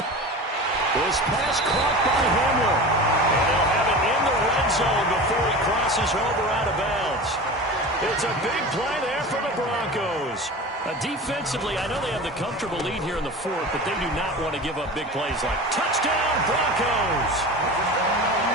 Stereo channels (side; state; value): both; normal; correlation 0.33